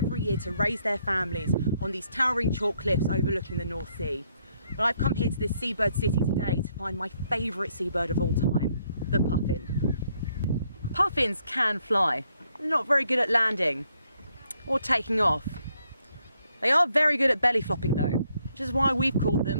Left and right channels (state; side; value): inverted; both; correlation -0.73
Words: year to raise their families on these towering chalk cliffs overlooking the North Sea. But I've come here to this seabird city today to find my favourite seabird of all time, the puffin. Puffins can fly. They're not very good at landing or taking off. They are very good at belly flopping though, which is why we've called